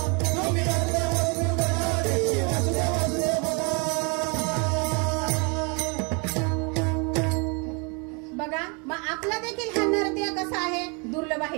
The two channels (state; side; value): quieter; left; 33.1 dB